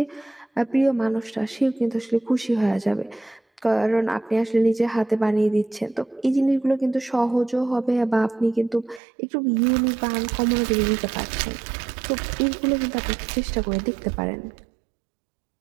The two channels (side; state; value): left; drops out; at 9.0 s